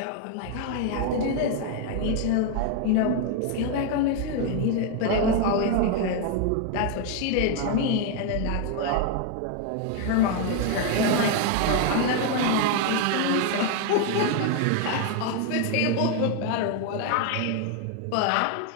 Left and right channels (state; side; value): different; both; correlation 0.01